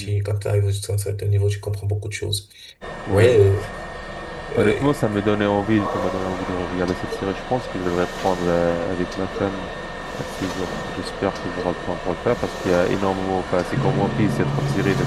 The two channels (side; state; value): both; identical; correlation 1.00